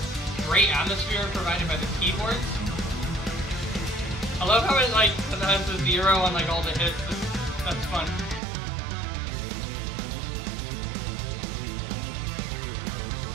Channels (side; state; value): left; drops out; at 8.4 s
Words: atmosphere provided by the keyboards. I love how it has the zero on like all the hits. That's fun.